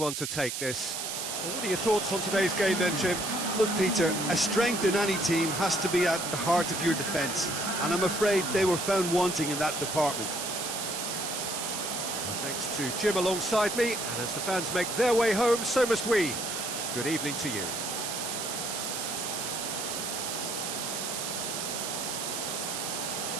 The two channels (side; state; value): right; noise; hiss, 4 dB below the sound